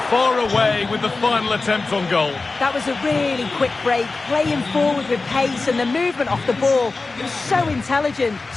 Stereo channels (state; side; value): quieter; right; 3.7 dB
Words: far away with the final attempt on goal. That was a really quick break, playing forward with pace and the movement off the ball. It was so intelligent,